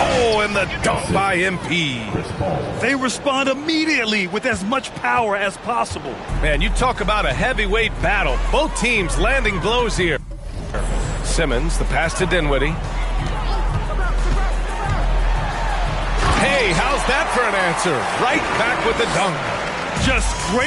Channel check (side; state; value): both; identical; correlation 1.00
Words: and the dunk by MP. They respond immediately with as much power as possible. Man, you talk about a heavyweight battle. Both teams landing blows here. Simmons, the pass to Dinwiddie. Hey, how's that for an answer? Right back with the dunk. Just